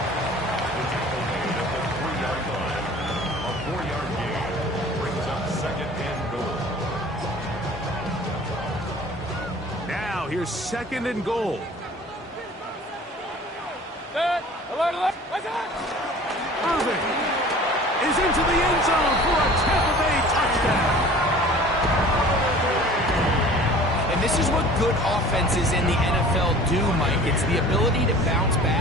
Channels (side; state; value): both; normal; correlation 0.45